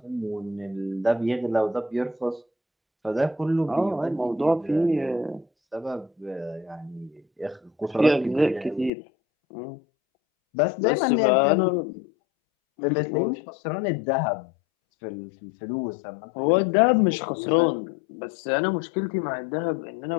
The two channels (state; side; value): drops out; right; at 8.9 s